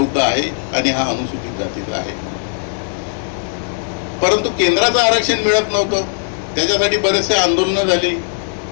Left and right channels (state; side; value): silent; right; digital silence